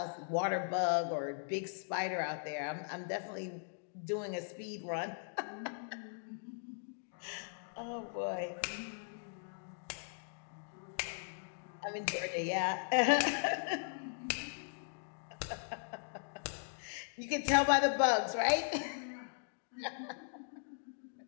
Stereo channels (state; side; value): silent; right; digital silence